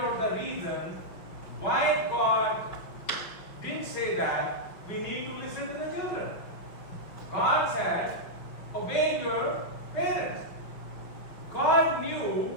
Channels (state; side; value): late; right; 5.6 ms